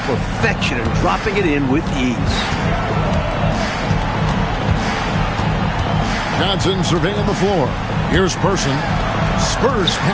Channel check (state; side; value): identical; both; correlation 1.00